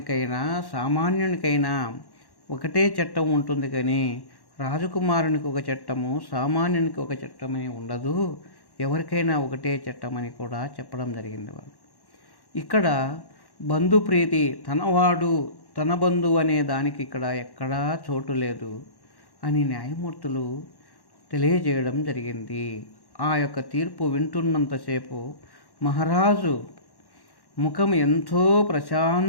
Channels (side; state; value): right; late; 1.1 ms